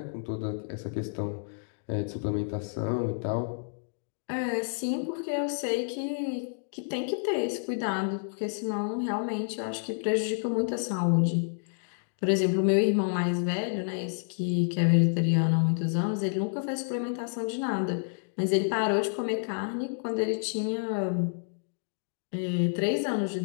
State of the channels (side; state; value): right; silent; digital silence